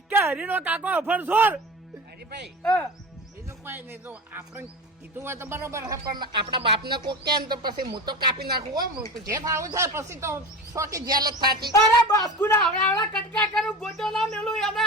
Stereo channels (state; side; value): normal; both; correlation 0.30